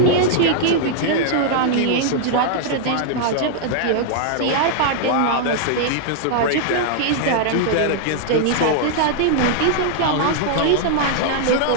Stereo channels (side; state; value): both; different; correlation -0.01